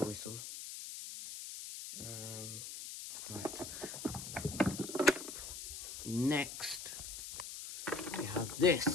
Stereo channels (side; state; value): left; noise; hiss, 8 dB below the sound